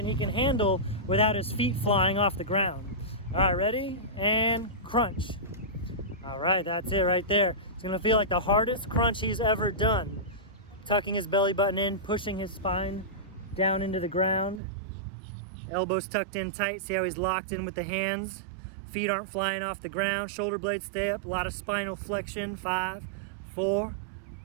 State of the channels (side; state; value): left; drops out; at 14.6 s